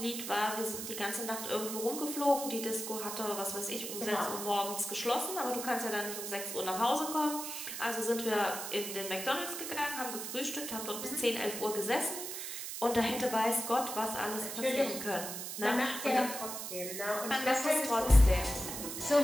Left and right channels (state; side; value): noise; right; hiss, 6 dB below the sound